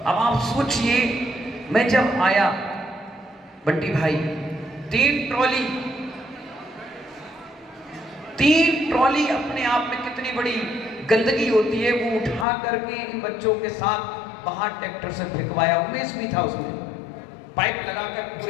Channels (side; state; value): right; drops out; at 12.5 s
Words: अब आप सोचिए, मैं जब आया बंटी भाई, 3 ट्रॉली अपने आप में कितनी बड़ी गंदगी होती है, वो उठा करके इन बच्चों के साथ बाहर ट्रैक्टर से फेंकवाया। उमेश भी था उसमें, पाइप लगाकर